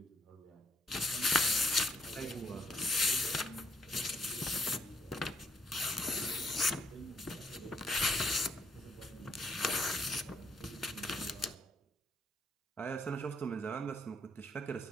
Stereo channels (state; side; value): normal; both; correlation 0.71